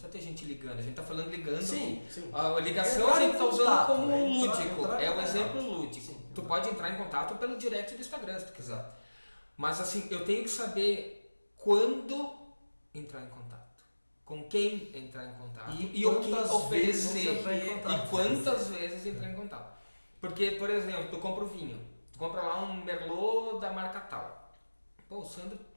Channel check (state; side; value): inverted; both; correlation -1.00